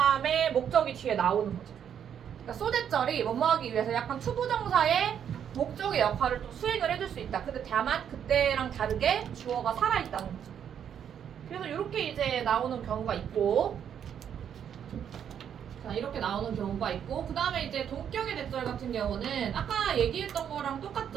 목적이 뒤에 나오는 거죠. 그러니까 소대절이 뭐뭐하기 위해서 약간 투부정사의 목적의 역할을 또 수행을 해줄 수 있다. 근데 다만 그때랑 다르게 주어가 살아있다는 거죠. 그래서 이렇게 이제 나오는 경우가 있고, 자, 이렇게 나오는 경우가 있고, 그 다음에 이제 동격의 대절 같은 경우는 아까 얘기했던 거랑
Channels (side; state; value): left; quieter; 8.7 dB